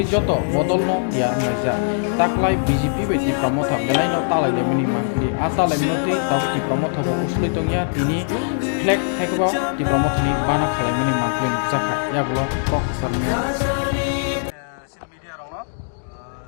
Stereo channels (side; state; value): right; silent; digital silence